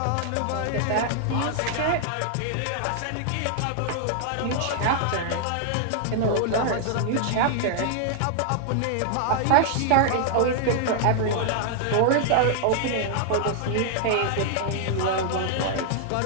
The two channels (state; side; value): different; both; correlation -0.01